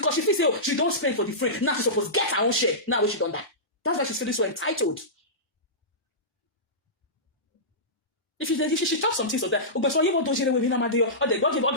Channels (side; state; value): both; normal; correlation -0.18